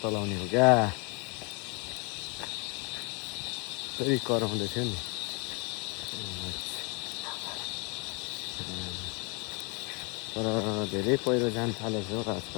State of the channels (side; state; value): right; quieter; 32.8 dB